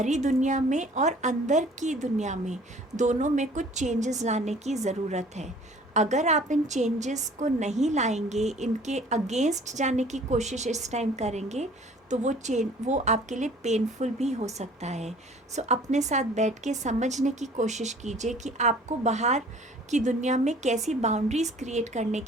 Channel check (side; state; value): both; normal; correlation 0.52